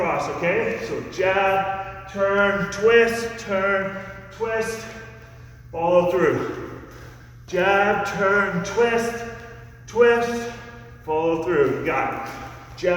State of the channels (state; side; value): identical; both; correlation 1.00